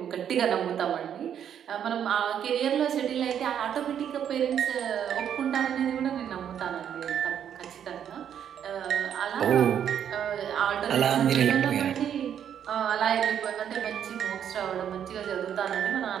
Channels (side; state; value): left; quieter; 9.1 dB